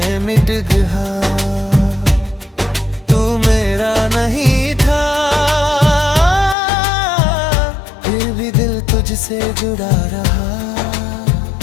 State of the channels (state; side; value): drops out; right; at 6.6 s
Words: मिट गया। तू मेरा नहीं था, फिर भी दिल तुझसे जुड़ा रहा।